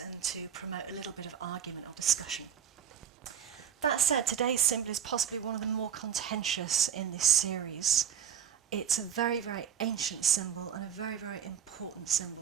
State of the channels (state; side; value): quieter; left; 8.6 dB